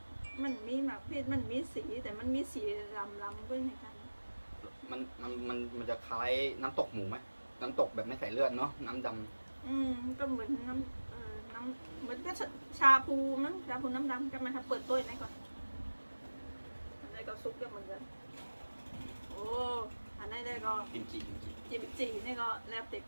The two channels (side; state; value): both; inverted; correlation -1.00